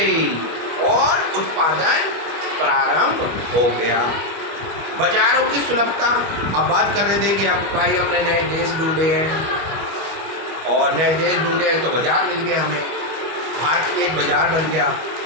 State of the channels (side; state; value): left; late; 25 ms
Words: और उत्पादन प्रारंभ हो गया। बाजारों की सुलभता, अब बात कर रहे थे कि अब भाई हमने नए देश ढूंढे हैं और नए देश ढूंढे हैं तो बाजार मिल गए हमें, भारत भी एक बाजार बन गया।